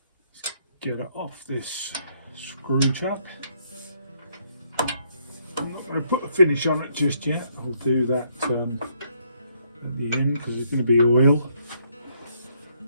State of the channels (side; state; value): both; inverted; correlation -0.71